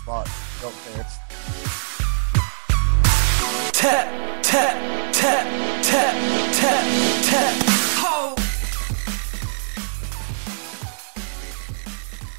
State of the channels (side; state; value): left; silent; digital silence